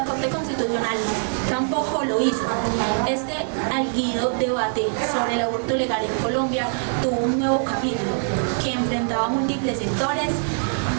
Corte Constitucional tampoco lo hizo. Este álgido debate sobre el aborto legal en Colombia tuvo un nuevo capítulo que enfrentaba a múltiples sectores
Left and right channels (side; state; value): left; silent; 58 dB below the other